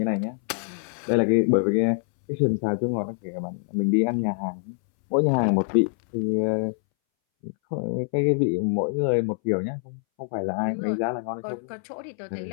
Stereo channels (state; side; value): silent; right; 62 dB below the other